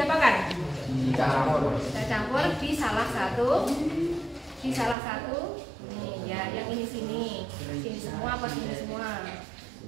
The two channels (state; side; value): drops out; left; at 5.0 s